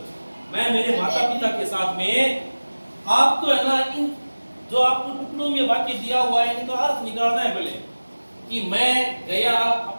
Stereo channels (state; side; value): inverted; both; correlation -1.00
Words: मैं मेरे माता पिता के साथ में। आपको है ना इन जो आपको टुकड़ों में वाक्य दिया हुआ है इनका अर्थ निकालना है पहले कि मैं गया